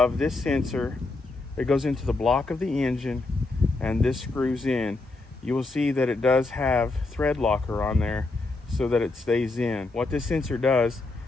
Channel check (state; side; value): quieter; right; 3.3 dB